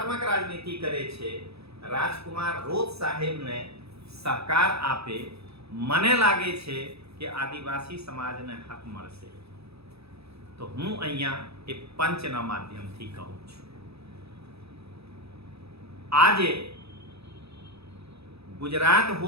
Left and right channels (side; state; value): left; late; 0.78 ms